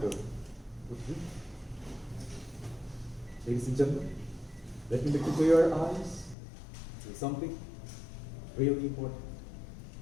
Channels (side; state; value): right; drops out; at 6.4 s